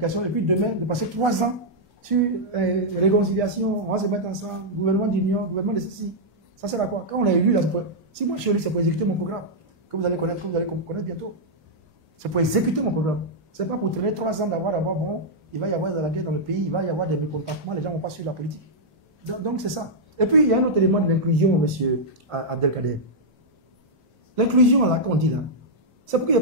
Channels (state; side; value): normal; both; correlation -0.07